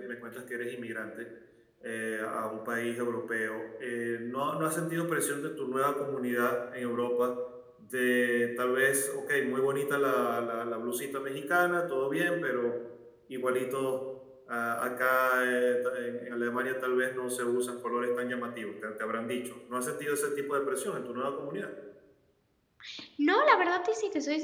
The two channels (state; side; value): identical; both; correlation 1.00